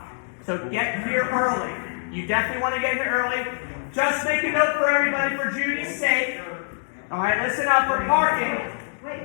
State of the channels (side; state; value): right; silent; digital silence